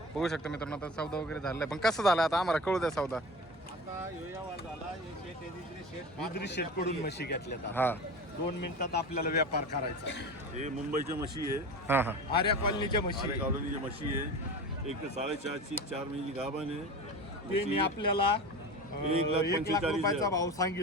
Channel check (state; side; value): normal; both; correlation 0.32